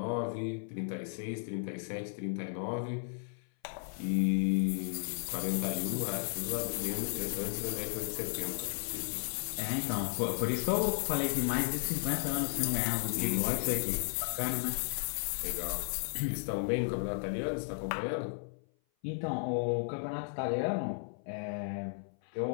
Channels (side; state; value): right; silent; 55 dB below the other